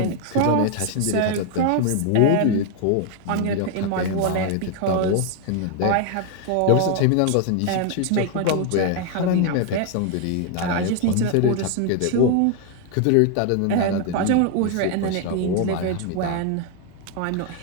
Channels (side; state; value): both; different; correlation 0.01